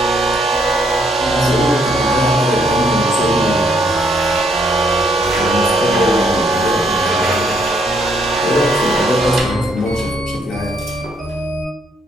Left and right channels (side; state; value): both; normal; correlation 0.71